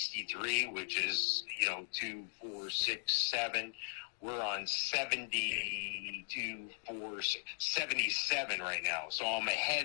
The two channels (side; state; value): right; silent; digital silence